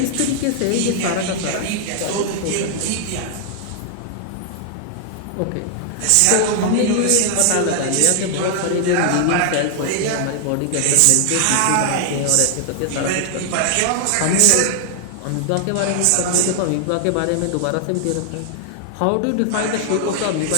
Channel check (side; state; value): both; different; correlation 0.00